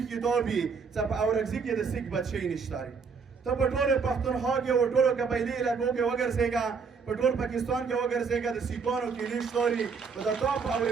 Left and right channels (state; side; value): quieter; left; 5.4 dB